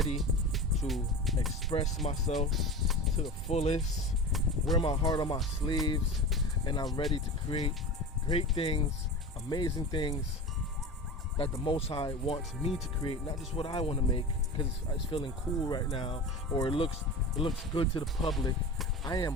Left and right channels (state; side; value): normal; both; correlation 0.30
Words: to express myself to the fullest, wear my heart on my sleeves, and I'm ready to create great things, amazing things, that the Most High wants me to create, not just what I want to make because it's feeling cool right now or it looks good to the public. I